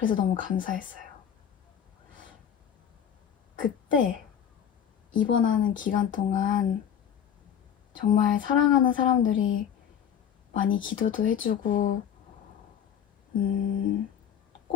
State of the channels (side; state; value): right; quieter; 8.8 dB